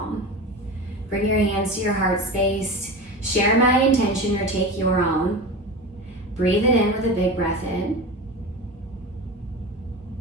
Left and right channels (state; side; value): normal; both; correlation 0.28